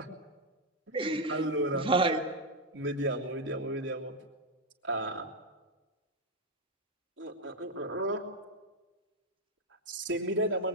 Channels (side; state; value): both; normal; correlation 0.03